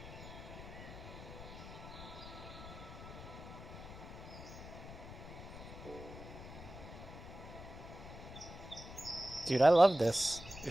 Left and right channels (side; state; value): left; noise; rumble, 12 dB below the sound